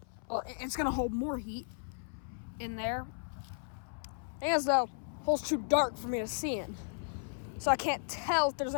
Well, it's going to hold more heat in there. And as though the hole's too dark for me to see in, so I can't tell if there's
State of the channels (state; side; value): silent; right; 54 dB below the other